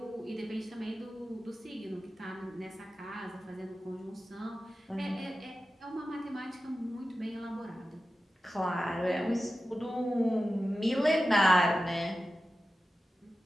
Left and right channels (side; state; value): both; normal; correlation 0.93